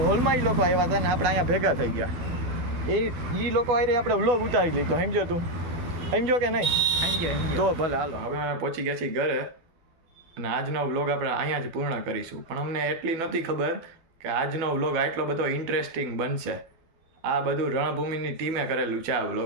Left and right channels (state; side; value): late; left; 12 ms